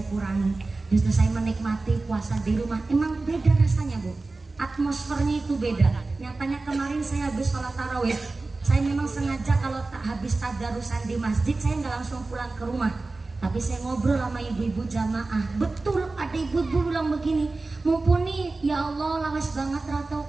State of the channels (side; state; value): left; quieter; 3.5 dB